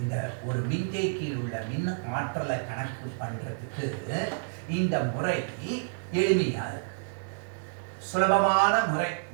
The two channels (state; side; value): silent; left; digital silence